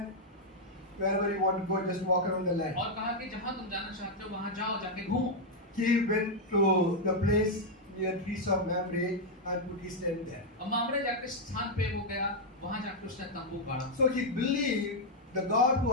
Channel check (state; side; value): normal; both; correlation -0.01